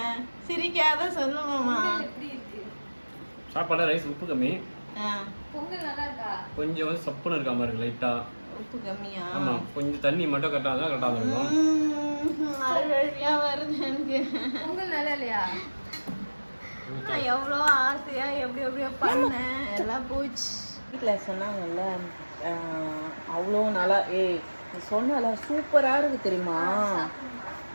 சிரிக்காத சொல்லுமாமா. சாப்பாடு ரைஸ் உப்பு கம்மி, பொங்கல் நல்லா இருக்கா? கொஞ்சம் வந்து சப்புன்னு இருக்கா மாதிரி இருக்கு, லைட்டா உப்பு கம்மியா? ஆமா, கொஞ்சம் தண்ணி மட்டும் கரெக்டாக தான் கரெக்டாக இருக்கும். அழுவழியா வருது எனக்கு. பொங்கல் நல்லா இல்லையா? நான் எவ்வளோ ஆசையா எப்படி எப்படியோ பண்ணேன், எல்லாம் போச்சு. வீட்டில் சொன்னாங்கல்ல, அவ்வளோ நல்லா சொன்னால சூப்பராக இருக்குது தெரியுமா?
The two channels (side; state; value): both; inverted; correlation -1.00